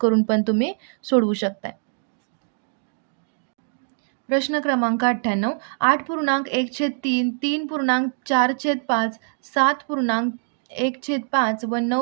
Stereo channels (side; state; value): left; silent; digital silence